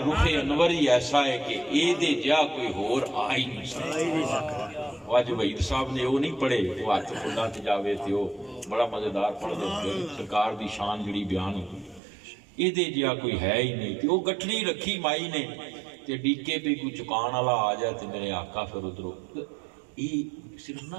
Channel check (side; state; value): left; drops out; at 12.0 s